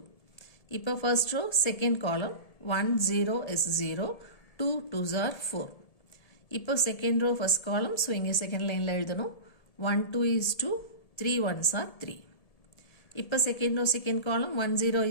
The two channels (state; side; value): late; right; 1.7 ms